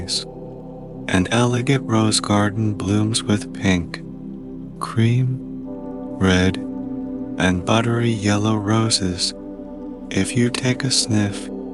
An elegant rose garden blooms with pink, cream, red, and buttery yellow roses. If you take a sniff,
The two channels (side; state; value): both; identical; correlation 1.00